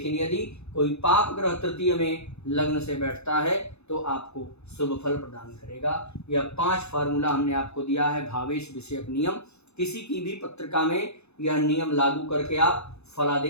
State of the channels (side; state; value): right; late; 0.80 ms